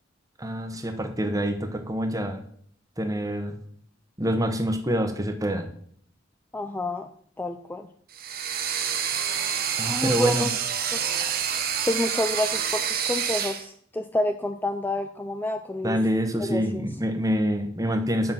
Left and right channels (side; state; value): both; normal; correlation 0.61